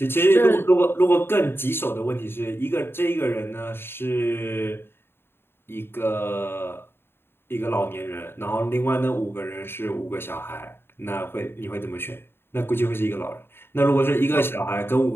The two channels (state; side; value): late; right; 0.11 ms